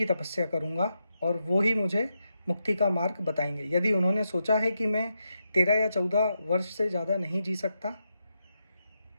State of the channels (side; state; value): both; inverted; correlation -0.84